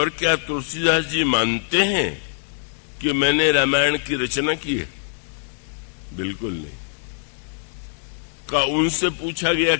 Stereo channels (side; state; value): right; silent; 63 dB below the other